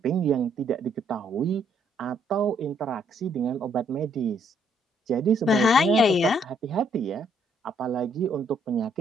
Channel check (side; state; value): both; normal; correlation 0.69